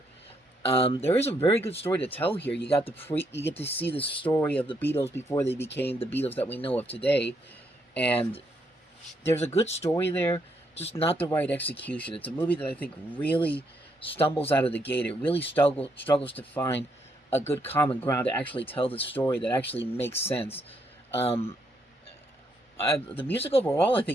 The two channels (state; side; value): normal; both; correlation 0.75